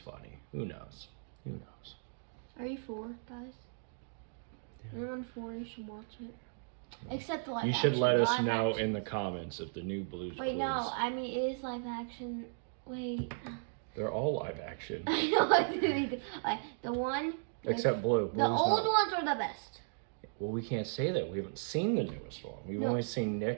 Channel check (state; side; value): silent; left; digital silence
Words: Who knows? Who knows? Are you 4, guys? Yeah. Anyone 4, you should watch it. Except the live You action. should let us Live know action. in the comments if the new Blue's Wait, Clues... no, I mean, it is live action. Wait. They're all live action. I know what to do. Like, the one... Except Blue. The Blue's old not. ones are the best. Well, we can't say that. We haven't seen the newest one. We've No. only seen